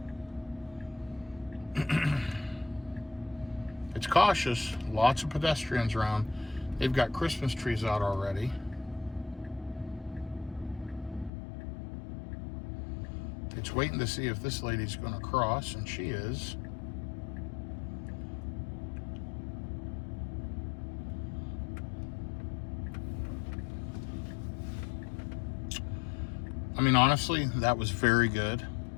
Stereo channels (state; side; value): drops out; right; at 11.3 s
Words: It's cautious. Lots of pedestrians around. They've got Christmas trees out already. It's waiting to see if this lady's going to cross, and she is. I mean, honestly, that was very good.